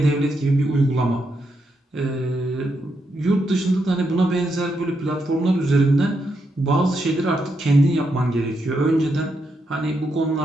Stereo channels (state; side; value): normal; both; correlation 0.81